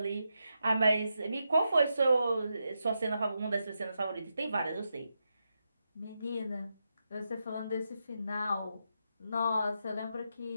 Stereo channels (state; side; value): inverted; both; correlation -0.86